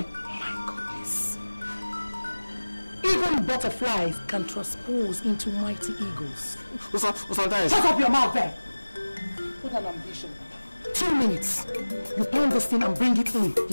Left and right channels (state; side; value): inverted; both; correlation -1.00